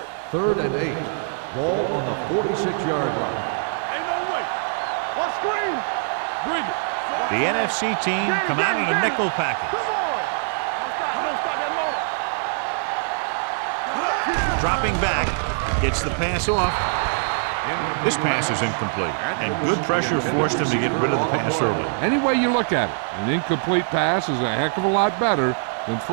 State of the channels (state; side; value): silent; left; digital silence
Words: Third and 8. Ball on the 46-yard line. Bring it. The NFC team come out in a nickel package. Come on. Don't stop that motor. Dropping back, gets the pass off. This pass is incomplete, and good pressure forced him to get rid of the pass early. Any way you look at it, an incomplete pass is a heck of a lot better than